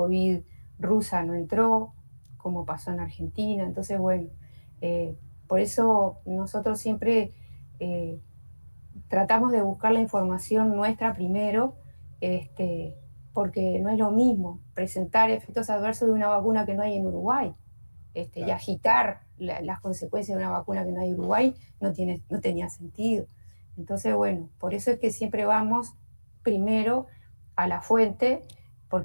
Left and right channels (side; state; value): both; inverted; correlation -1.00